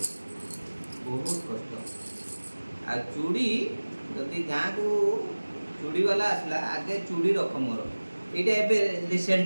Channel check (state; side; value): inverted; both; correlation -1.00